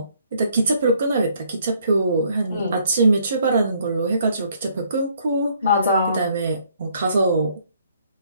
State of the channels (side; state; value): both; inverted; correlation -0.65